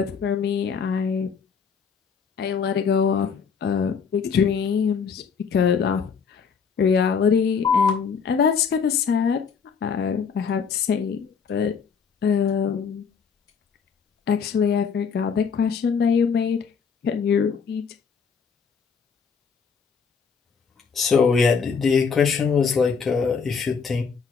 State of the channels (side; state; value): right; quieter; 6.1 dB